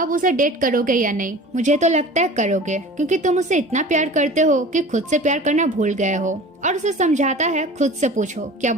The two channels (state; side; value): normal; both; correlation 0.40